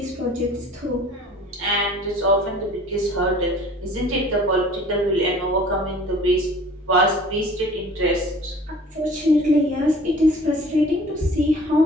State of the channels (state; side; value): normal; both; correlation 0.47